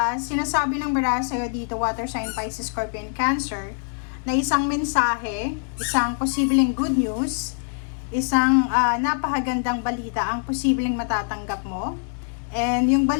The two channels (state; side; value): silent; right; digital silence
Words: sinasabi ng baraha sa'yo dito, water sign, Pisces, Scorpio, and Cancer, na isang mensahe, isang posibleng good news, isang napakagandang balita ang posibleng matatanggap mo. And yung